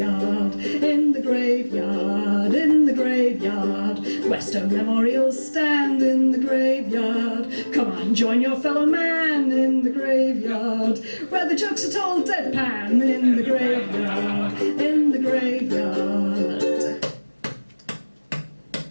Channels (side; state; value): both; inverted; correlation -1.00